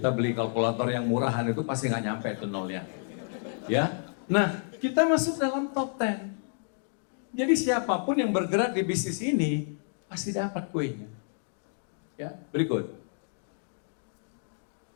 beli kalkulator yang murahan itu pasti nggak nyampe itu nolnya. Ya, nah kita masuk dalam top 10. Jadi siapapun yang bergerak di bisnis ini pasti dapat kuenya. Ya, berikut.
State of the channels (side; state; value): right; silent; digital silence